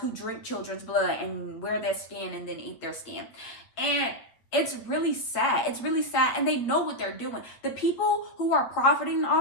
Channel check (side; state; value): right; late; 8.4 ms